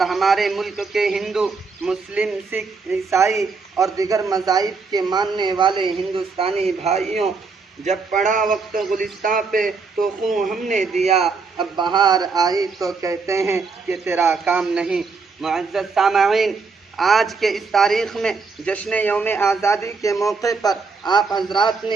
हमारे मुल्क के हिंदू, मुस्लिम, सिख, ईसाई और दिगर मज़ाहिब के मानने वाले हिंदुस्तानी भाइयों, जब पड़ा वक्त गुलिस्तां पे तो खून हमने दिया, अब बहार आई तो कहते हैं कि तेरा काम नहीं। मुअज़्ज़ज़ सामईन, आज के इस तारीख़ में जश्न यौम आज़ादी के मौके पर आप हजरात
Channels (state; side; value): quieter; left; 4.6 dB